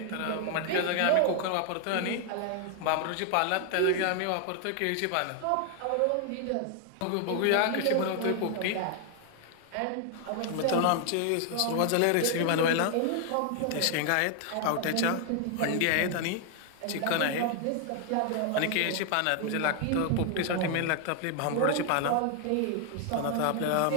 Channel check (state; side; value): different; both; correlation 0.00